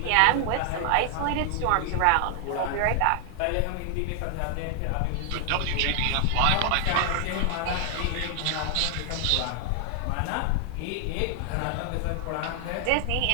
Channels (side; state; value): both; different; correlation 0.00